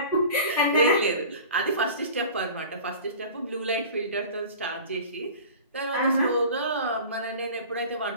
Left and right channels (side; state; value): both; inverted; correlation -0.39